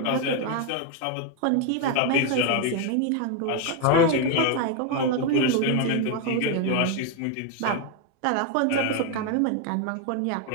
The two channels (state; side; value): different; both; correlation 0.01